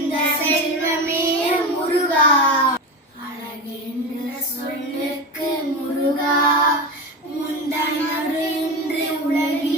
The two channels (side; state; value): both; normal; correlation 0.23